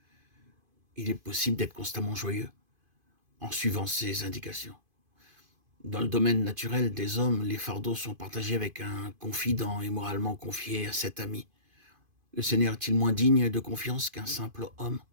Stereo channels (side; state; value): left; late; 2.5 ms